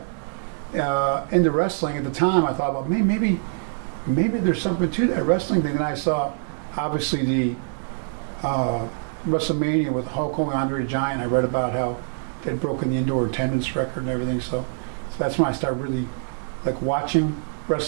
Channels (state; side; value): silent; left; digital silence